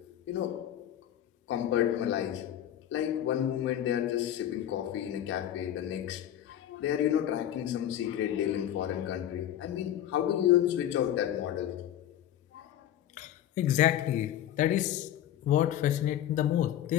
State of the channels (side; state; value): right; quieter; 11.5 dB